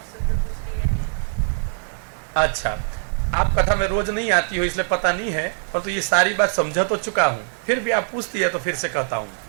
अच्छा, आप कथा में रोज नहीं आती हो इसलिए पता नहीं है, पर तो ये सारी बात समझा तो चुका हूं, फिर भी आप पूछती है तो फिर से कहता हूं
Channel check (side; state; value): left; silent; 64 dB below the other